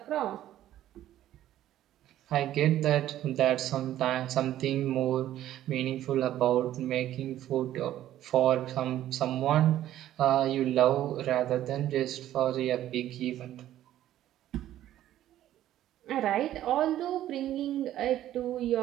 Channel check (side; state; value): left; quieter; 12.8 dB